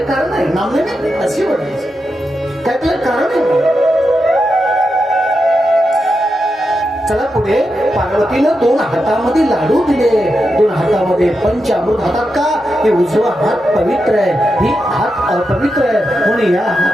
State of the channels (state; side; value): normal; both; correlation 0.87